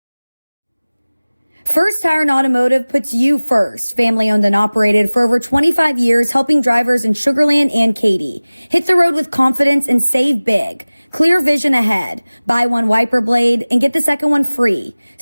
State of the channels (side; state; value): both; inverted; correlation -0.99